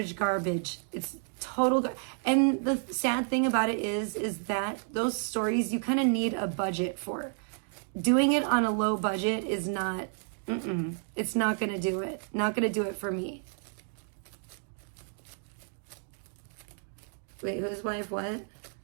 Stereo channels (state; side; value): silent; left; 56 dB below the other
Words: It's total and the sad thing about it is that those stories you kind of need a budget for. Doing it on a low budget is not, it's not going to do it. Not going to do it for me. Wait, whose wife what?